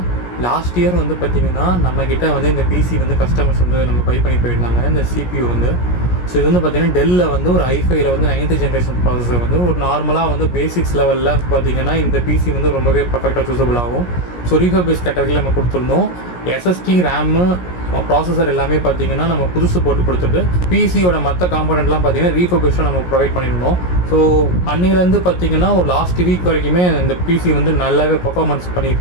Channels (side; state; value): right; late; 17 ms